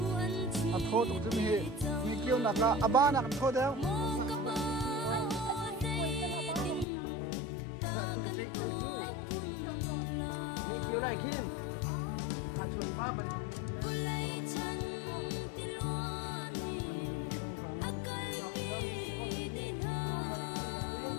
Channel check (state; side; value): drops out; right; at 6.9 s